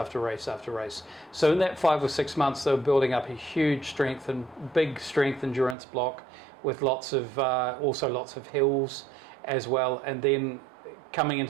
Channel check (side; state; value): left; drops out; at 5.8 s